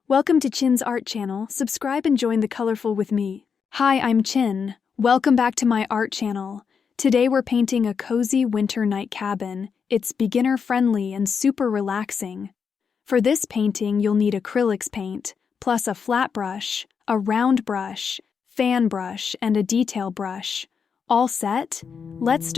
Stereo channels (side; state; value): right; quieter; 6.3 dB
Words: Welcome to Chin's Art Channel. Subscribe and join the colorful with me. Hi, I'm Chin. Welcome back to my art channel. Today we're painting a cozy winter night cabin. It's beginner-friendly and super relaxing. For this painting, you'll need acrylics paint, plus a flat brush, a round brush, fan brush, and a detail brush. All set? Let's